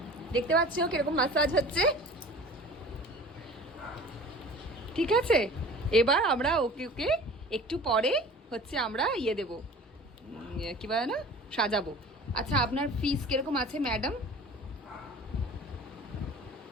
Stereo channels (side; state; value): both; normal; correlation 0.42